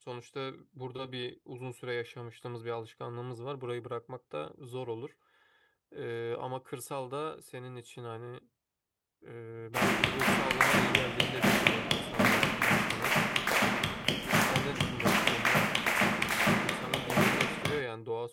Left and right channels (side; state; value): both; identical; correlation 1.00